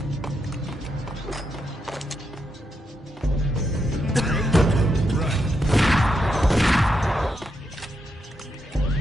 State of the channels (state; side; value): normal; both; correlation 0.82